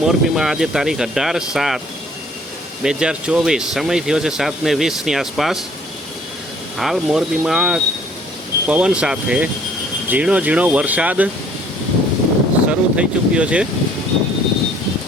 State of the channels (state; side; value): normal; both; correlation 0.58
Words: મોરબીમાં આજે તારીખ 18/7/2024, સમય થયો છે 7:20ની આસપાસ. હાલ મોરબીમાં પવન સાથે ઝીણો ઝીણો વરસાદ શરૂ થઈ ચૂક્યો છે.